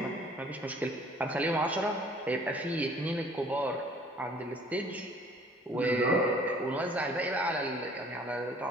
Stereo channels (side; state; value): both; normal; correlation 0.54